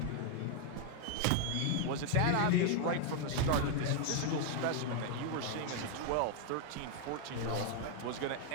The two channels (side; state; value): both; different; correlation 0.00